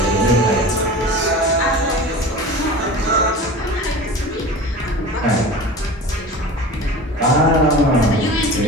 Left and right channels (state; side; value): normal; both; correlation 0.34